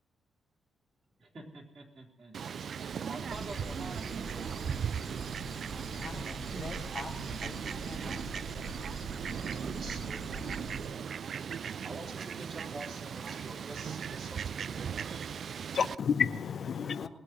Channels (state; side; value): normal; both; correlation 0.74